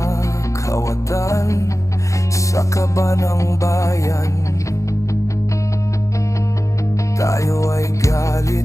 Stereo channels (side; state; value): right; late; 0.15 ms